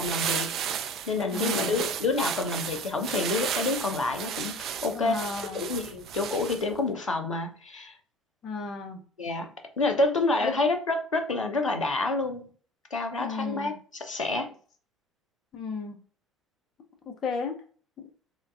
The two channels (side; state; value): both; normal; correlation 0.44